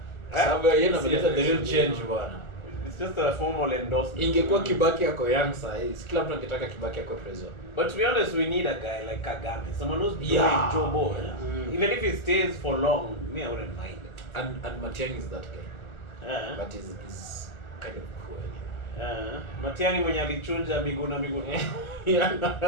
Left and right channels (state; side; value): late; right; 1.3 ms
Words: Sababu yeye analeta the real change bwana. It's just a formal endorsement. Ingekuwa Kibaki yako young size, kila mtu angetaka Kibaki yako president. But to be honest, we need a guy like Kagame, someone who's doing Yeah. jobo. Even if he stays for long, me, I wouldn't mind. And Matiang'i is that guy. But he's kind of cool. Matiang'i mwenye alichunja Miguna. Yeah.